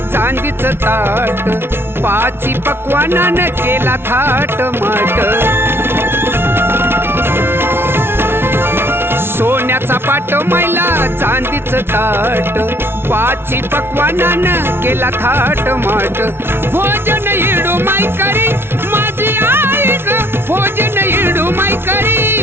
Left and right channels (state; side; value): late; left; 0.11 ms